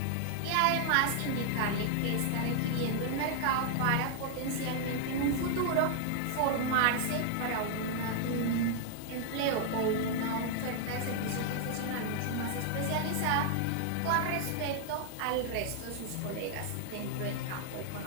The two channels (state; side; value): different; both; correlation 0.00